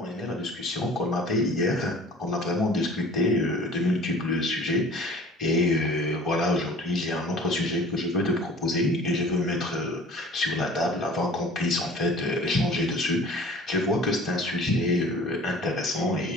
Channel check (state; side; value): normal; both; correlation 0.47